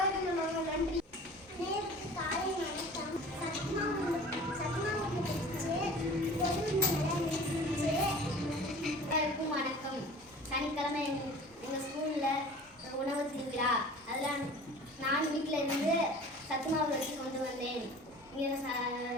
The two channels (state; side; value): normal; both; correlation 0.43